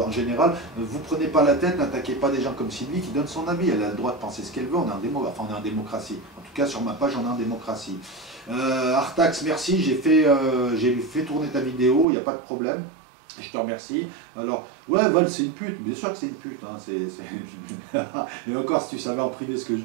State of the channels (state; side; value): drops out; left; at 12.1 s